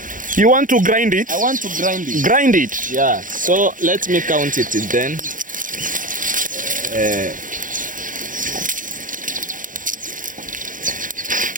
You want to grind it? I want to grind it. Grind it. Yeah. So let me count it then.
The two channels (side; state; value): left; late; 0.39 ms